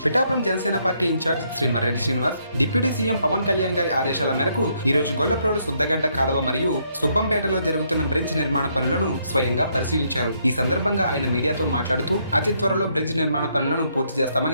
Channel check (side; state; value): both; inverted; correlation -0.73